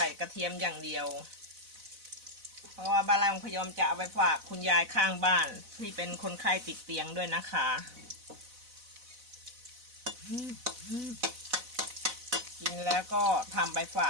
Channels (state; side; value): late; left; 4.0 ms